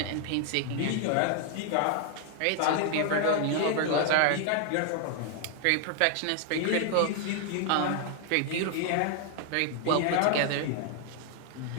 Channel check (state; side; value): different; both; correlation 0.00